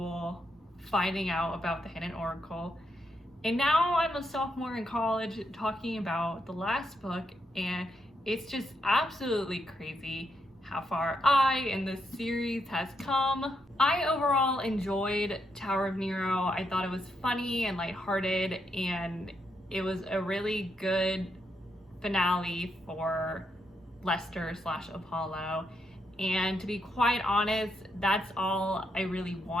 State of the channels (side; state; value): both; normal; correlation 0.80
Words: finding out about the Hidden Oracle. And now I'm a sophomore in college talking about the last book, and it's just absolutely crazy how far I and this series has come. I overall enjoyed Tower of Nero. I thought it was funny and lighthearted, and it was a really good finale for Lester/Apollo. And to be quite honest, that's all I really